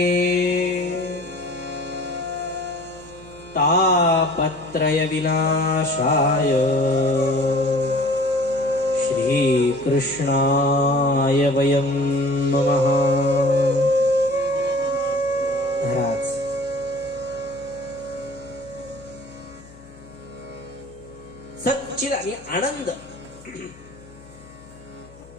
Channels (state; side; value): noise; left; hum, 23 dB below the sound